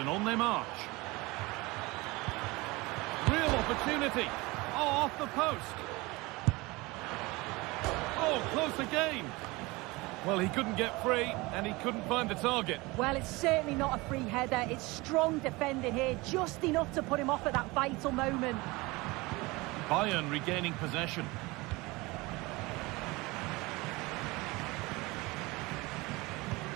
on they march. Real opportunity. Oh, off the post. Oh, close again. Well, he couldn't get free and he couldn't find the target. Well, it's certainly not a free header. It's strong defending here, just enough to put him off at that vital moment. Bayern regaining possession.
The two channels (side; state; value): left; quieter; 23.0 dB